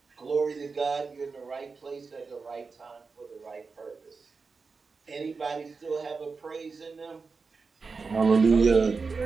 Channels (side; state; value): left; quieter; 4.6 dB